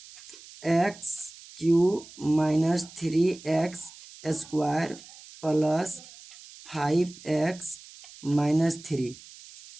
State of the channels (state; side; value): noise; right; hiss, 19 dB below the sound